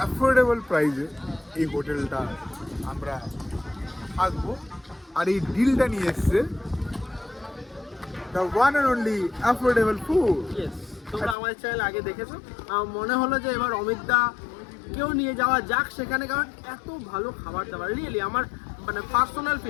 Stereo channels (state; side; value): drops out; right; at 11.4 s